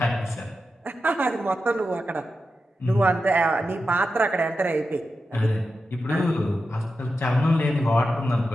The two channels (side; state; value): both; normal; correlation 0.90